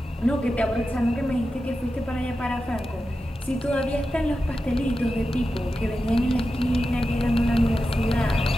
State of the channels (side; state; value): both; normal; correlation 0.91